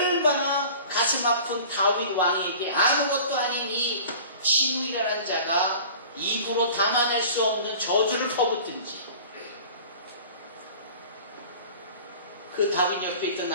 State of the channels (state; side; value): inverted; both; correlation -0.42